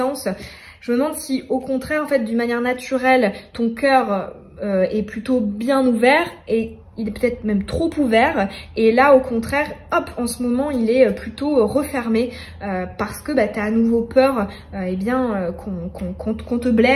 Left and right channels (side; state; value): both; identical; correlation 1.00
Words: Je me demande si au contraire en fait d'une manière naturelle ton cœur est plutôt bien ouvert et il est peut-être même trop ouvert, et là au contraire, hop, en ce moment il est plutôt refermé parce que tu as à nouveau peur qu'on te